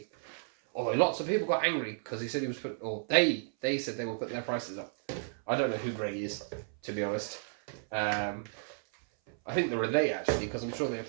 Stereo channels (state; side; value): silent; left; 56 dB below the other